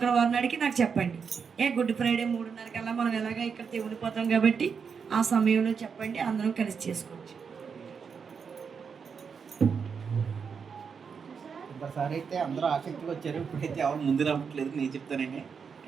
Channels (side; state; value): left; quieter; 6.1 dB